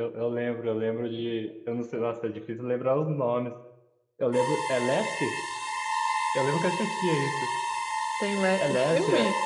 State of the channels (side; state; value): both; identical; correlation 1.00